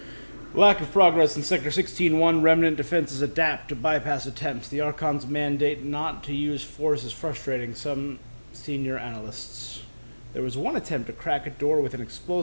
Lack of progress in Sector 16-1. Remnant defenses adapt to bypass attempts. The Archon's mandate not to use force is frustrating. Some Senior analysts. There was one attempt to crack a door with an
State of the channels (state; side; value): inverted; both; correlation -1.00